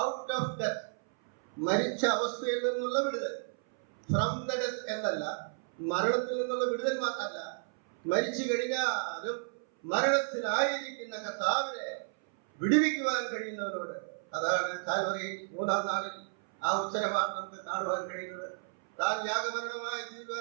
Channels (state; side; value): silent; left; 56 dB below the other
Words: ഔട്ട് ഓഫ് ഡെത്ത്, മരിച്ച അവസ്ഥയിൽ നിന്നുള്ള വിടുതൽ. ഫ്രം ദ ഡെത്ത് എന്നല്ല, മരണത്തിൽ നിന്നുള്ള വിടുതൽ മാത്രമല്ല, മരിച്ചു കഴിഞ്ഞാലും മരണത്തിലായിരിക്കുന്ന കർത്താവിനെ വിടുവിക്കുവാൻ കഴിയുന്നവരോട്. അതാണ് കാൽവറിയിൽ 3-ാം നാളിൽ ആ ഉത്തരവാണ് നമുക്ക് കാണുവാൻ കഴിയുന്നത്. താൻ യാഗമരണമായി